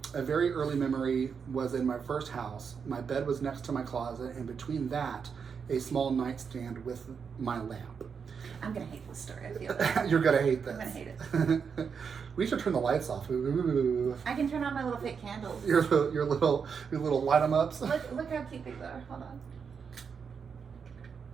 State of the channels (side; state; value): left; quieter; 6.3 dB